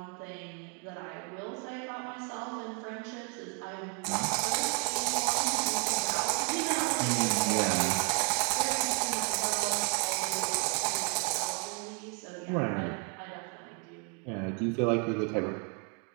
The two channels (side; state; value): left; quieter; 36.8 dB